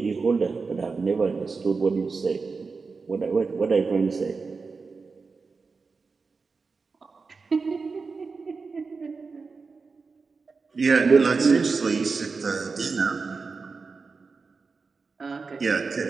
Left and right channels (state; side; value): quieter; left; 4.6 dB